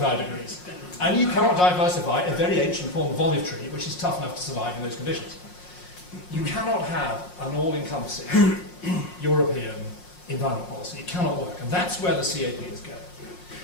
degrees. And you cannot diversify a very ancient form of olive tree, which is tough enough to survive in those conditions. You cannot have an all-encompassing European environment policy. It cannot work. And that's where the CAP is going.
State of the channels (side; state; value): right; late; 5.6 ms